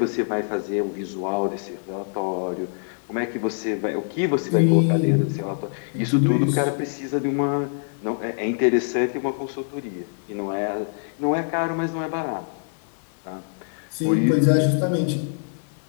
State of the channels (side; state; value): right; silent; digital silence